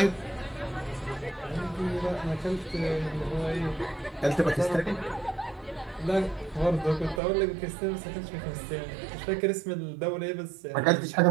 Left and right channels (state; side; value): drops out; left; at 7.2 s